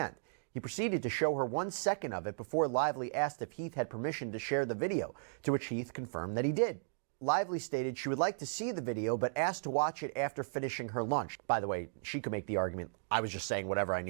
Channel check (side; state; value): left; silent; digital silence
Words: He proceeded to show her 1 second of it before Lively asked if Heath had permission to share the video, to which Heath confirmed that he did. Lively stated she would like to see the video, but asked to watch it after finishing her lunch. By the way, she could make the argument, I was just saying whatever I